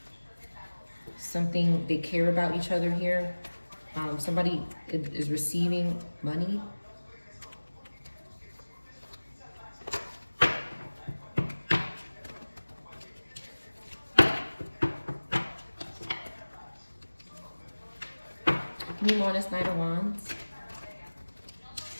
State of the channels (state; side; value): inverted; both; correlation -1.00